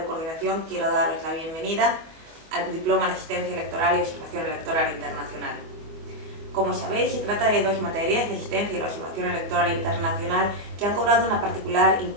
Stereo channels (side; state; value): left; late; 25 ms